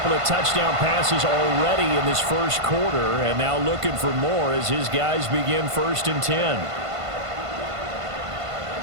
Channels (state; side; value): late; left; 1.5 ms